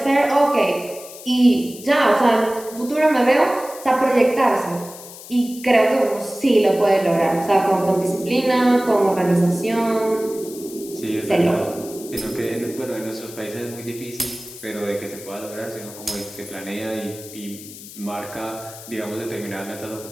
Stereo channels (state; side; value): noise; left; hiss, 16 dB below the sound